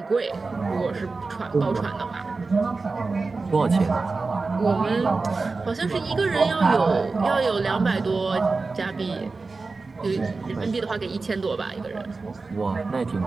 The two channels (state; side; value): quieter; left; 3.9 dB